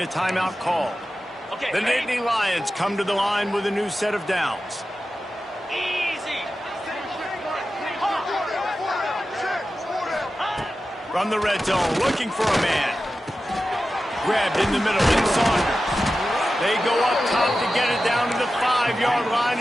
timeout called. The Nittany Lions come to the line with a new set of downs. From the red zone, looking for a man. Grabbed in the middle in Saunders. They go up top to get it down to the 5-yard line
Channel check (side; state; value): both; normal; correlation 0.93